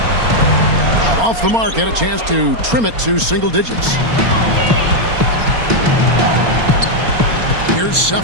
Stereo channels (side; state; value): left; late; 4.3 ms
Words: Off the mark, had a chance to trim it to single digits. Here's